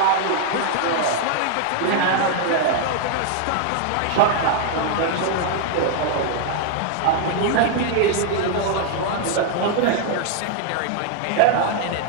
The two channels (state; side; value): different; both; correlation 0.00